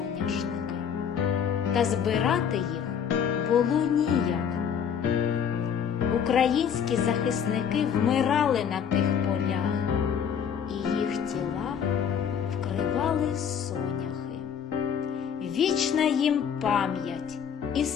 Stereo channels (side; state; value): right; quieter; 7.8 dB